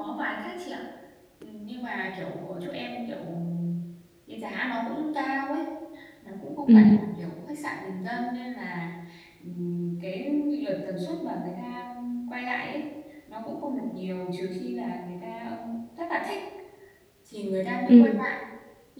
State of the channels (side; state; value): both; identical; correlation 1.00